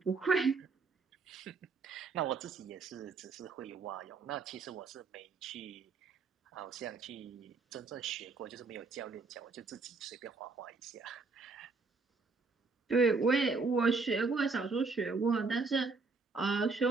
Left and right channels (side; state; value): left; quieter; 4.3 dB